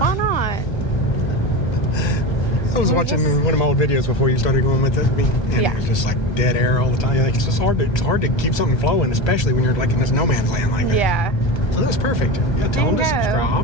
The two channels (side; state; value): right; late; 1.3 ms